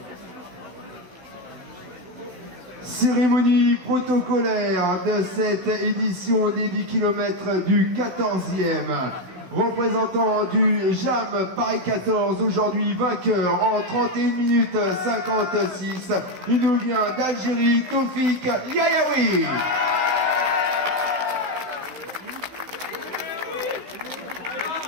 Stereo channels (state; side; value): late; left; 16 ms